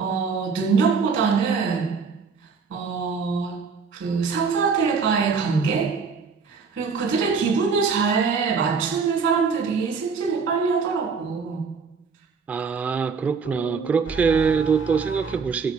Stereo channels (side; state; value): left; quieter; 5.3 dB